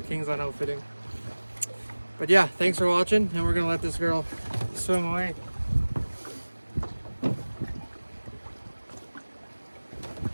Kingsland Outfitting. But yeah, thanks for watching, and we're gonna let this girl swim away.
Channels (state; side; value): inverted; both; correlation -1.00